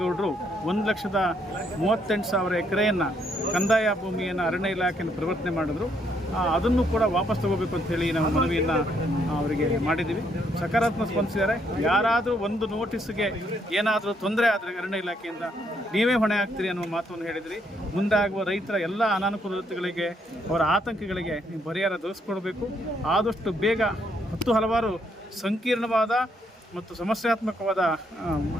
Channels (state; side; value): normal; both; correlation 0.72